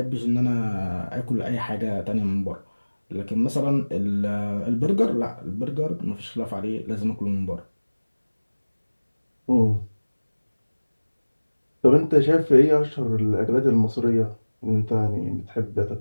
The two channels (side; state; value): both; inverted; correlation -1.00